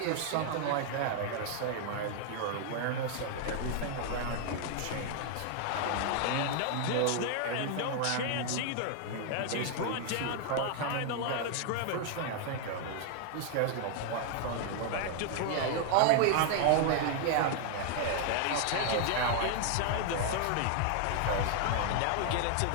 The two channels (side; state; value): both; different; correlation 0.00